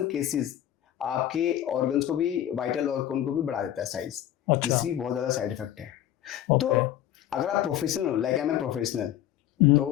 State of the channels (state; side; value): quieter; right; 11.9 dB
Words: केसेस आपके ऑर्गन्स को भी, वाइटल ऑर्गन को भी बढ़ा देता है साइज, जिसकी बहुत ज्यादा साइड इफेक्ट है। तो अगर आप प्रोफेशनल हो, लाइक आई एम प्रोफेशनल,